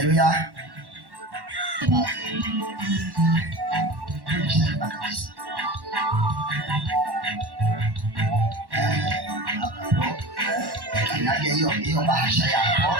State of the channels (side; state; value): left; late; 1.1 ms